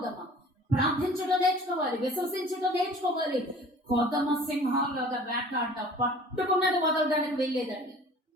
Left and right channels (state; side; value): normal; both; correlation 0.47